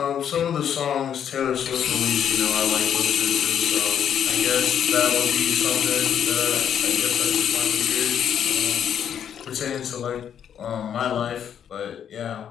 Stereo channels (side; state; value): right; quieter; 8.9 dB